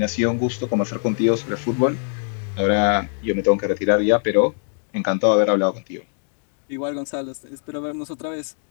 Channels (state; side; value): silent; right; 58 dB below the other